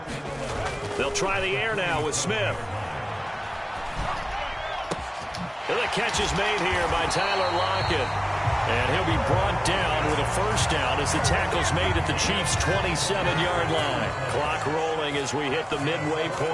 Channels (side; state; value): both; identical; correlation 1.00